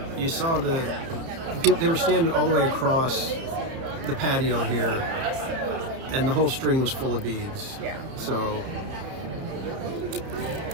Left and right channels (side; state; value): left; late; 30 ms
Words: you saw they were standing all the way across the patio here, and the whole string was full of beads. Yeah. So